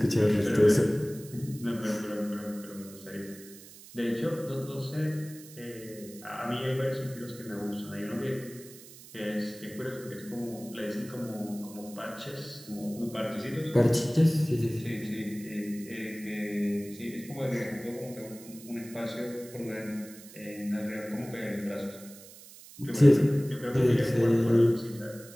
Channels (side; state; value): right; noise; hiss, 18 dB below the sound